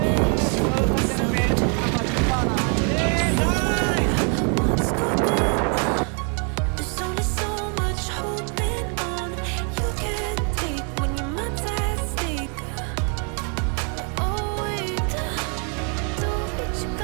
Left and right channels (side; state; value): left; quieter; 39.7 dB